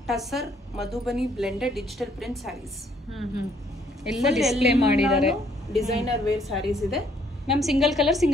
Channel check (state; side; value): normal; both; correlation 0.66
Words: Tussar Madhubani blended digital print sarees ಎಲ್ಲ ಡಿಸ್ಪ್ಲೇ ಮಾಡಿದ್ದಾರೆ. ಡಿಸೈನರ್ ವೇರ್ ಸ್ಯಾರೀಸ್ ಇದೆ ಮ್ಯಾಮ್. ಸಿಂಗಲ್ ಕಲರ್